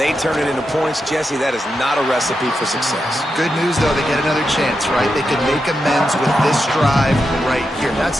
turn it into points. Jesse, that is not a recipe for success. Good news, though, they get another chance, right? They could make amends with this drive right here. That's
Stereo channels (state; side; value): normal; both; correlation 0.87